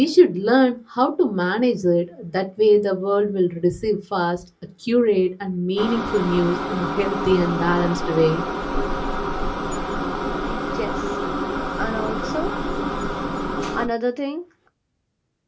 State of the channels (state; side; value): identical; both; correlation 1.00